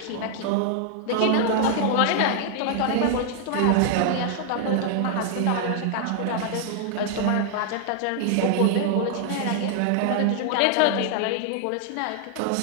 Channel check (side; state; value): both; different; correlation 0.00